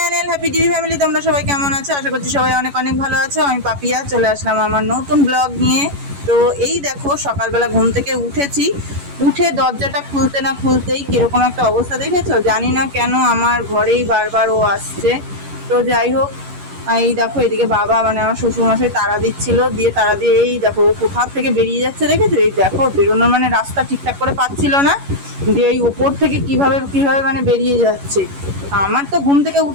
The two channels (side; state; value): left; late; 11 ms